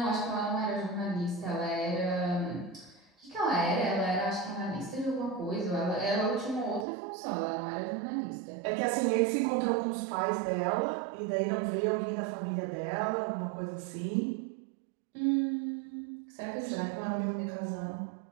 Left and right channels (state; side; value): drops out; left; at 6.9 s